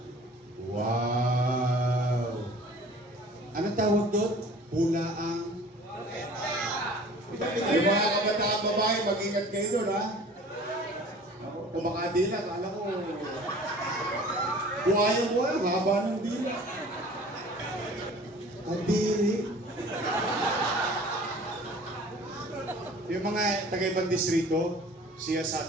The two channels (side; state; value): both; normal; correlation 0.46